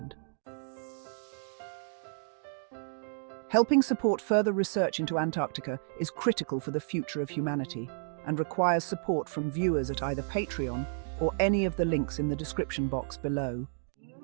Helping support further research into Antarctica is critical for the future of humanity and requires support from viewers at either Patreon or any of the links in the description box below.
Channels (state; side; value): silent; left; digital silence